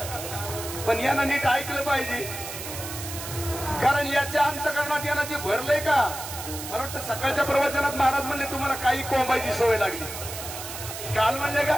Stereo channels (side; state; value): right; noise; hiss, 9 dB below the sound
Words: पण यानं नीट ऐकलं पाहिजे, कारण याच्या अंतकरणात यानं जे भरलंय का. मला वाटतं सकाळच्या प्रवचनात महाराज म्हणले तुम्हाला काही कोंबायची सवय लागली. काल म्हणले का